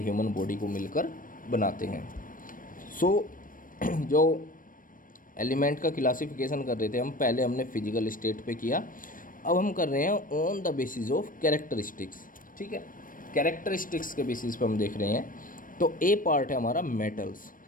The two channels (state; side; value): late; right; 0.40 ms